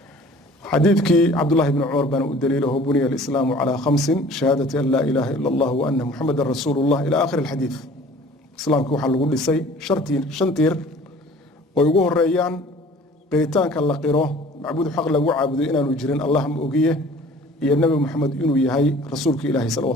xadiidkii cabdullahi bni cumar baana u daliilaho buniya alislaamu calaa khamsin shahaadati an laa ilaaha ila allah wa anna muxamadan rasuulullah ila aakhiri alxadiid. islaamka waxaa lagu dhisay shan tiir oo ugu horeeyaan qiritaanka la qiro macbuud xaq lagu caabudo inaanu jirin allah ma ogiye, iyo nebi moxamed inuu yahay rasuulka ilaahi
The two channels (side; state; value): both; normal; correlation 0.49